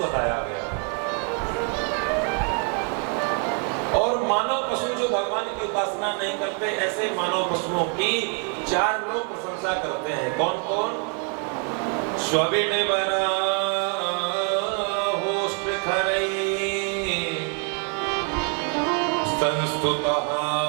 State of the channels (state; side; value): quieter; left; 38.9 dB